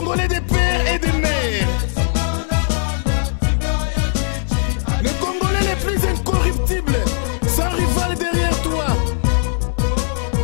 Congolais des pères et des mères. Les Congolais les plus incorruptibles, sans rival derrière toi.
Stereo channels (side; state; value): right; silent; digital silence